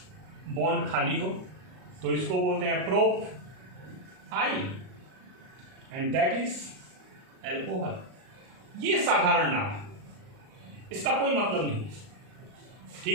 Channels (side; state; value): left; late; 38 ms